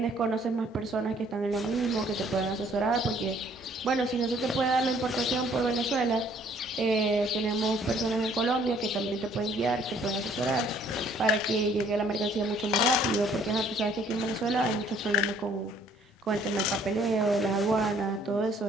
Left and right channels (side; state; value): both; normal; correlation 0.61